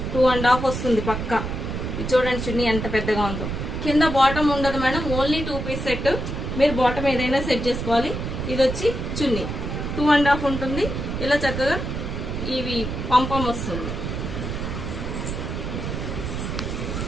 2.5 వస్తుంది పక్క. ఇది చూడండి చున్నీ ఎంత పెద్దగా ఉందో. కింద బాటమ్ ఉండదు మేడం, ఓన్లీ 2 పీస్ సెట్. మీరు బాటమ్ ఏదైనా సెట్ చేసుకోవాలి. ఇది వచ్చి చున్నీ 2.5 ఉంటుంది. ఇలా చక్కగా ఇవి పంపం వస్తుంది.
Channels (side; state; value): right; noise; rumble, 4 dB below the sound